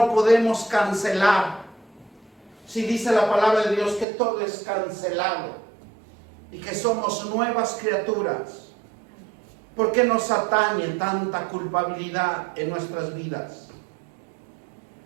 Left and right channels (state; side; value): drops out; left; at 4.0 s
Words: podemos cancelar? Si dice la palabra de Dios que todo es cancelado y que somos nuevas criaturas, ¿por qué nos atañe tanta culpabilidad en nuestras vidas?